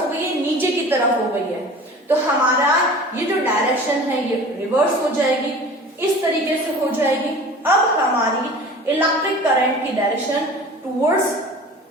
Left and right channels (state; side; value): normal; both; correlation 0.41